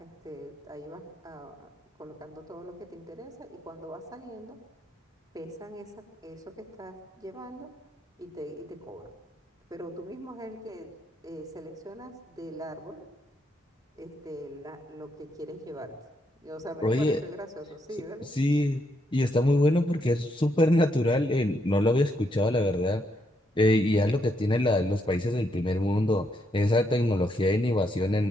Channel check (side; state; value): both; normal; correlation 0.77